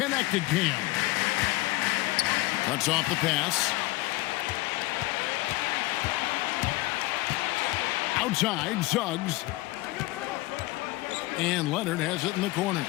Cam. Cuts off the pass. Outside, Suggs. And Leonard has it in the corner.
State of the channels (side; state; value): right; quieter; 20.0 dB